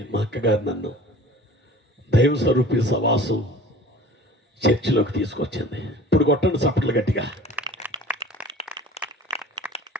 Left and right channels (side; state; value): both; normal; correlation 0.44